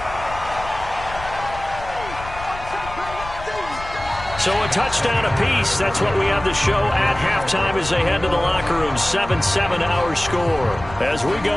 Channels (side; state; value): left; noise; rumble, 13 dB below the sound